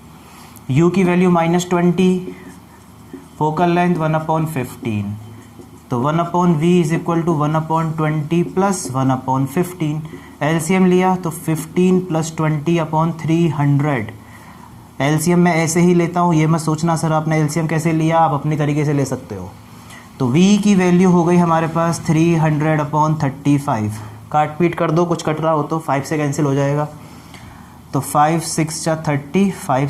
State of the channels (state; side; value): identical; both; correlation 1.00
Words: u की वैल्यू -20, फोकल लेंथ 1/15, तो 1/v is equal to 1/20 + 1/15। LCM लिया तो 15 + 20/300। एलसीएम मैं ऐसे ही लेता हूँ, ये मत सोचना सर आपने एलसीएम कैसे लिया, आप अपनी तरीके से ले सकते हो। तो v की वैल्यू हो गई हमारे पास 300/35, काट पीट कर दो, कुछ कट रहा हो तो 5 से कैंसिल हो जाएगा, तो 5 6 जा 30, 5